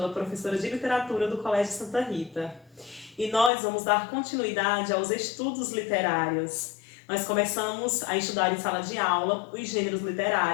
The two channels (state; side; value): drops out; right; at 3.5 s